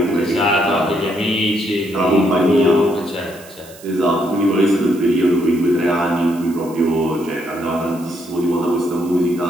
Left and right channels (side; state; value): right; noise; hiss, 21 dB below the sound